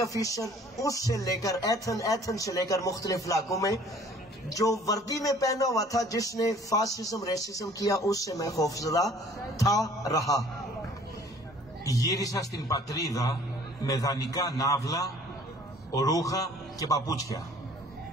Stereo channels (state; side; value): normal; both; correlation 0.53